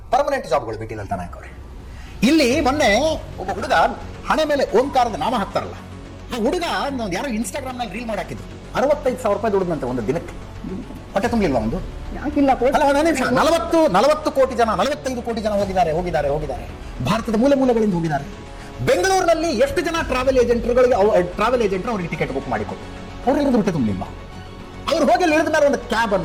ಪರ್ಮನೆಂಟ್ ಜಾಬ್ಗಳು ಬಿಟ್ಟಿಲ್ಲ ಅಂತ ನಾಯಕ್ ಅವರೇ. ಇಲ್ಲಿ ಮೊನ್ನೆ ಒಬ್ಬ ಹುಡುಗ ಹಣೆ ಮೇಲೆ ಓಂಕಾರದ ನಾಮ ಹಾಕ್ತಾರಲ್ಲ, ಆ ಹುಡುಗ ಯಾರೋ ಇನ್ಸ್ಟಾಗ್ರಾಮ್ ನಲ್ಲಿ ರೀಲ್ ಮಾಡಿ ಹಾಕಿದ್ರು. 65,000 ರೂಪಾಯಿ ದುಡಿದಂತೆ ಒಂದು ದಿನಕ್ಕೆ. ಹೊಟ್ಟೆ ತುಂಬಿಲ್ವಾ ಒಂದು? 40 ಕೋಟಿ ಜನ, 45 ಕೋಟಿ ಜನ ಹೋಗಿದ್ದಾರೆ. ಭಾರತದ ಮೂಲೆಗಳಿಂದ ಹೋಗಿದ್ದಾರೆ. ಬೆಂಗಳೂರಿನಲ್ಲಿ ಎಷ್ಟು ಜನ ಟ್ರಾವೆಲ್ ಏಜೆಂಟ್ರು ಅವರಿಗೆ ಟಿಕೆಟ್ ಬುಕ್ ಮಾಡಿಕೊಟ್ಟು ಅವ್ರಿಗೆ ಹೊಟ್ಟೆ ತುಂಬಲಿಲ್ವಾ? ಅವ್ರು ಹೋಗಿ ಇಳಿದ ಮೇಲೆ ಒಂದು ಕ್ಯಾಬ್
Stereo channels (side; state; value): both; identical; correlation 1.00